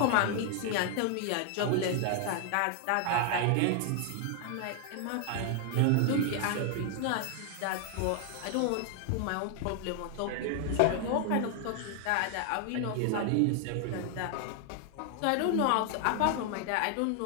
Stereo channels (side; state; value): both; different; correlation 0.00